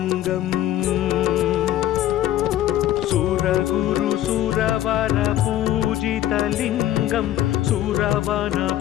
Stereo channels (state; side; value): quieter; right; 13.0 dB